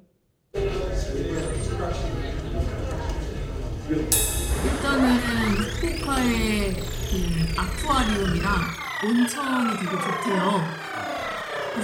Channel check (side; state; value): both; identical; correlation 1.00